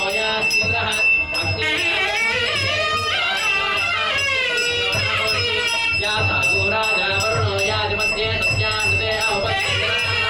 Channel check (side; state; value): both; identical; correlation 1.00